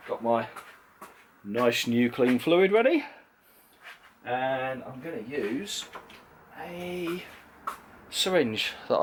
Got my nice new clean fluid ready, and I'm going to use a syringe that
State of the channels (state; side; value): identical; both; correlation 1.00